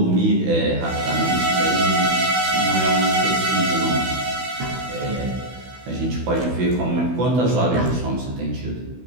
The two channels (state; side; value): late; left; 16 ms